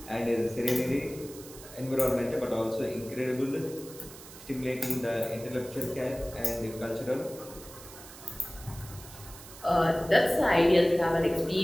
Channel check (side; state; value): right; noise; hiss, 17 dB below the sound